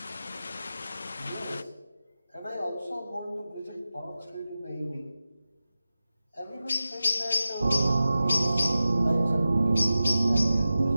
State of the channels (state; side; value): inverted; both; correlation -0.94